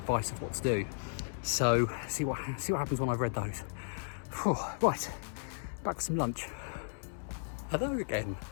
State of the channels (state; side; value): silent; right; 55 dB below the other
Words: of what to do. So see what happens when I've read those. Right, back for some lunch. Hello again.